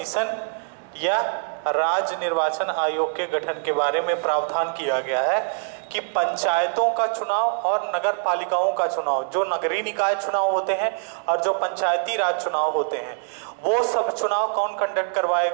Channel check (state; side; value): silent; left; 63 dB below the other